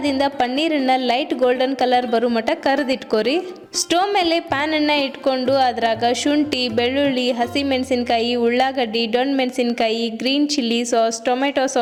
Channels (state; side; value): identical; both; correlation 1.00